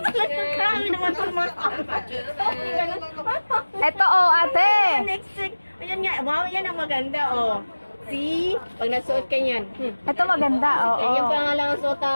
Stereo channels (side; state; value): both; inverted; correlation -1.00